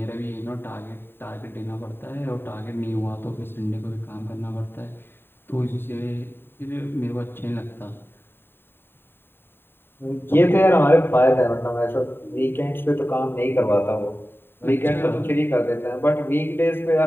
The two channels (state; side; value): late; right; 0.11 ms